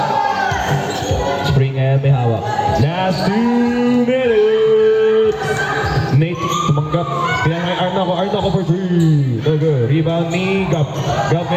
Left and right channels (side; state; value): both; identical; correlation 1.00